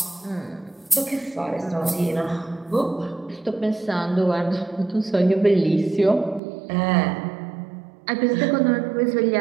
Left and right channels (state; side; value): drops out; left; at 6.4 s